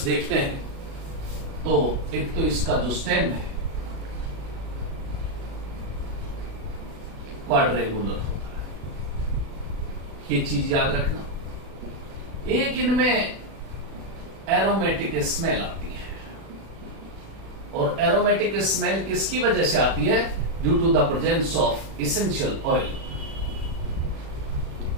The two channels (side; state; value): left; late; 36 ms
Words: देखते हैं तो एक तो इसका जो स्टेम है क्वाड्रेंगुलर होता है, ये चीज याद रखना। एक इनमें एरोमेटिक स्मेल आती है, और एरोमेटिक स्मेल किसकी वजह से आती है? Due to the presence of essential oil